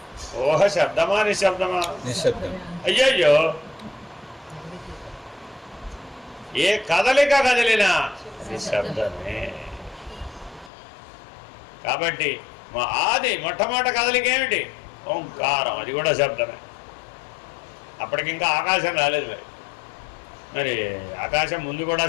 ఊహ శబ్దమా, నిశ్శబ్దమా? నిశ్శబ్దం. అయ్యయ్యో, ఏ కదలిక కదిలినా నిశ్శబ్దమే. కాబట్టి మా ఆది మొట్టమొదటి కదలిక ఏమిటి? ఓంకారం, అది కూడా శబ్దమే. అప్పటికింకా ఆకాశం రాలేదు. మరి ఆకాశం ముందు కూడా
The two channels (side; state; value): right; drops out; at 10.7 s